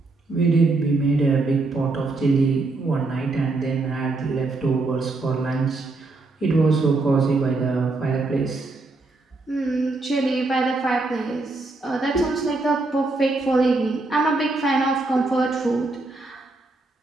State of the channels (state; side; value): quieter; left; 3.4 dB